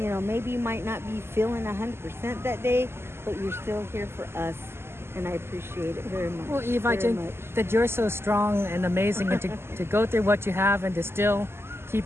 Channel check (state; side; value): late; left; 0.12 ms